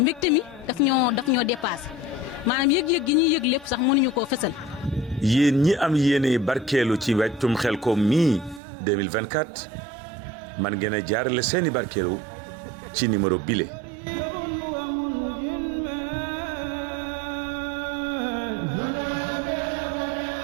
mi daf ñoo dépassé maanaam yëg-yëg gi ñuy yëg lépp sax mënuñu koo fësal. yéen ñi am yéene barkeelu ci wàccum Xelcom mii 2024 man ngeen a jaarale seeni barkeelu ci numéro bile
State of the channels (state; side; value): drops out; left; at 8.6 s